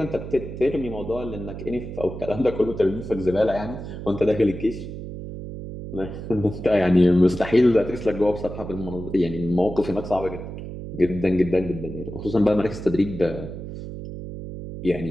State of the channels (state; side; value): noise; right; hum, 9 dB below the sound